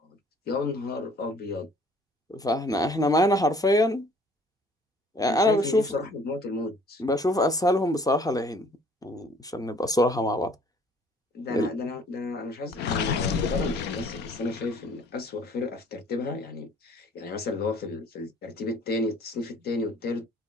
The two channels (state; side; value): normal; both; correlation 0.56